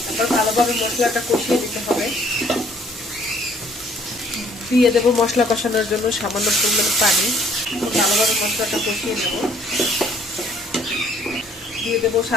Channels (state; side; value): normal; both; correlation 0.60